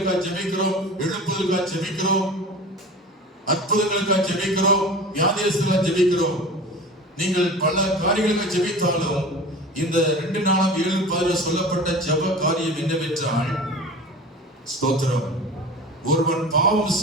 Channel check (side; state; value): both; normal; correlation 0.36